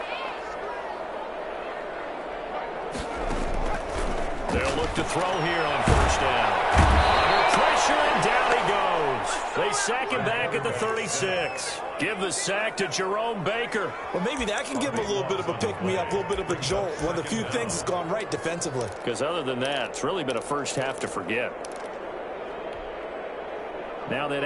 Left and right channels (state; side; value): identical; both; correlation 1.00